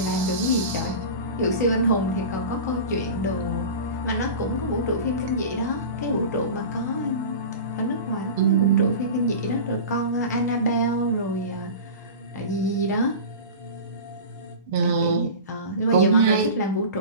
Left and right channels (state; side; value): inverted; both; correlation -0.32